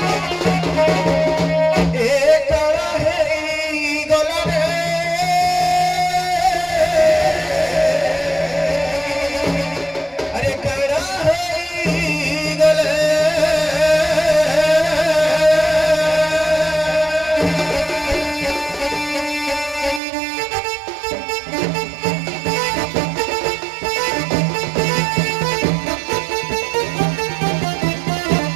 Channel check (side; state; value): left; drops out; at 20.0 s